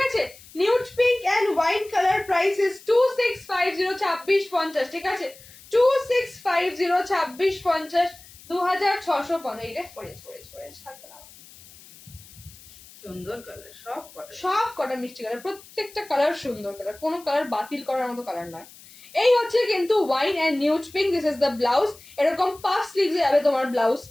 আছে? Nude pink and wine colour, price is 2650, 2650, ঠিক আছে? 2650, 2650, 2650। এইটা পড়েছে থাকবে না। সুন্দর কালার সব কটা। সব কটা মিষ্টি কালার, প্রত্যেকটা কালার সুন্দর কালার, কোনো কালার বাতিল করার মতো কালার নয়। এই হচ্ছে কিন্তু wine and nude pink. This is the blouse. এরকম পাফ স্লিভস যাবে তোমার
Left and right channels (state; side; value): noise; left; hiss, 21 dB below the sound